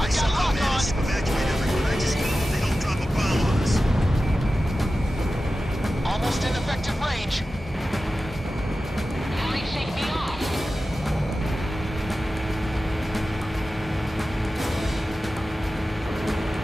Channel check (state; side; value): normal; both; correlation 0.94